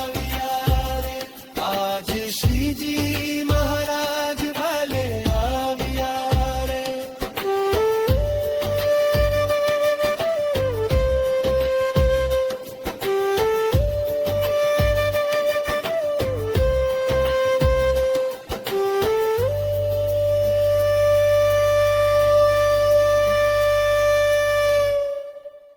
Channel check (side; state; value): both; identical; correlation 1.00